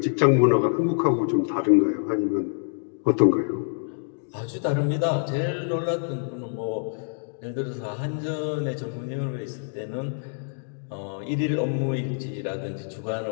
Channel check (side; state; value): right; silent; digital silence